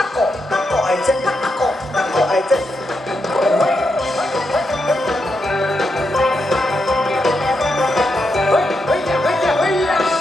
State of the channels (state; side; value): normal; both; correlation 0.83